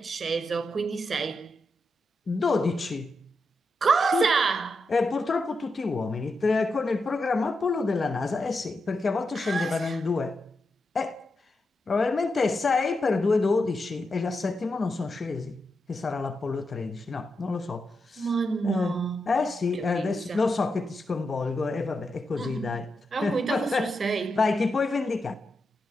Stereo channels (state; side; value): normal; both; correlation 0.86